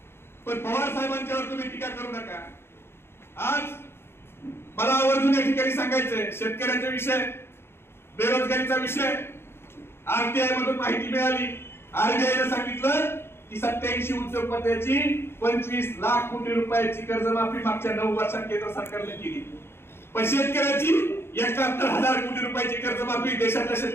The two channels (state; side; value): late; right; 0.12 ms